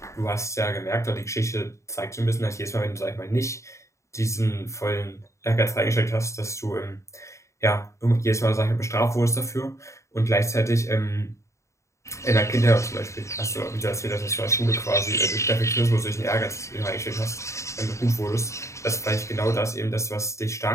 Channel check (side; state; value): right; late; 0.14 ms